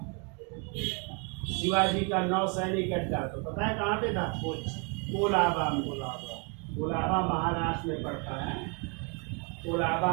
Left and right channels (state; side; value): quieter; left; 35.2 dB